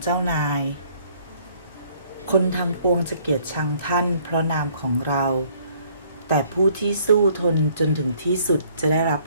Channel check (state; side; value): inverted; both; correlation -0.61